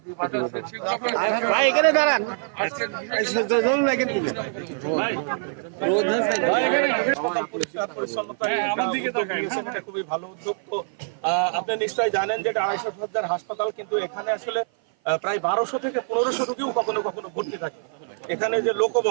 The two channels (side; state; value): left; silent; 55 dB below the other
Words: এখানে দাঁড়ান, খুবই ভালো উদ্যোগ। তো আপনি নিশ্চয়ই জানেন যে 250 শয্যার হাসপাতাল, কিন্তু এখানে আসলে প্রায় 1200 থেকে 1500 রোগীও কখনো কখনো ভর্তি থাকে। এখানে যে